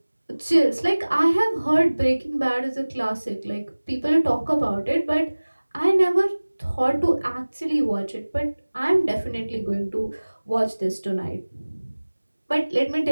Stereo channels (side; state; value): both; inverted; correlation -1.00